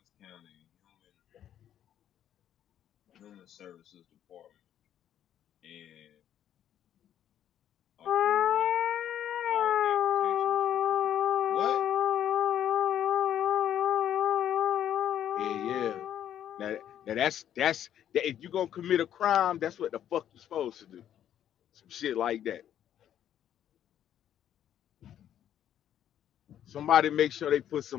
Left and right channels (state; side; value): quieter; right; 10.5 dB